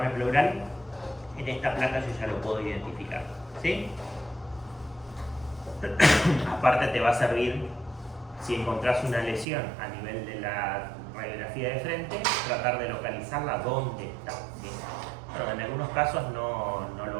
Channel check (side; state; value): left; drops out; at 9.5 s